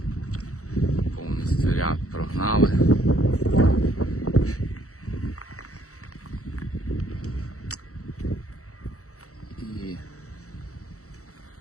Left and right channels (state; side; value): late; right; 0.65 ms